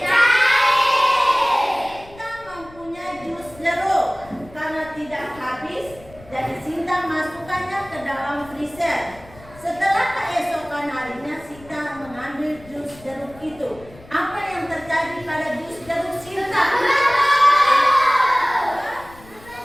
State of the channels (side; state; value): left; noise; rumble, 22 dB below the sound